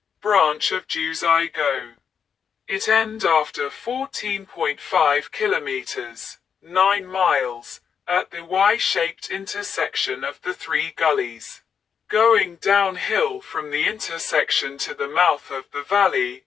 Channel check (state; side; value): quieter; right; 7.1 dB